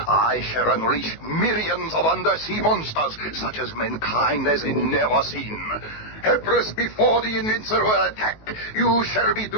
shall unleash millions of undersea monsters, such as mankind has never seen. Helpless before the invincible attack, you shall be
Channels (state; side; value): late; right; 19 ms